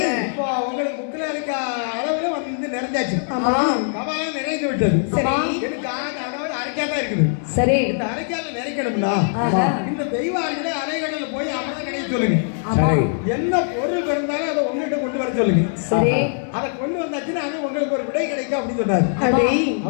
உங்களுக்கு புக்கில் இருக்க அளவுல வந்து நிறைஞ்சாச்சு. கபாலம் நிறைந்து விட்டது. எனக்கு அரைக்காதான் இருக்குது. சரி, இந்த அரைக்கால நிறைக்கணும்னா இந்த தெய்வார்களை அலைகடல போய் அமர்ந்த கிடைக்க சொல்லுங்க. என்ன பொருள் இருந்தாலும் அதை உங்ககிட்ட கொண்டு வர சொல்லுங்க. சரி, அதை கொண்டு வந்தாச்சுன்னா அது உங்களுக்கு ஒரு விடை கிடைக்கும் அப்படின்னு சொன்னாரு.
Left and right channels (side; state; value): right; silent; 64 dB below the other